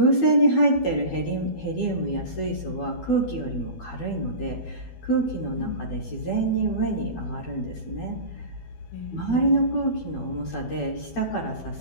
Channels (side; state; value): right; late; 12 ms